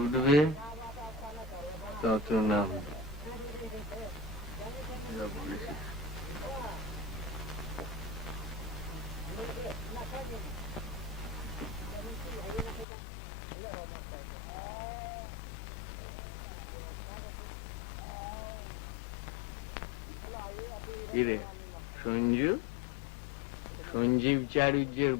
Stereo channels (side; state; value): right; drops out; at 12.9 s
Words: উঠবে তত নাম। যা বলেছিস। কিরে সঞ্জু, সঞ্জীব চারুজ্যের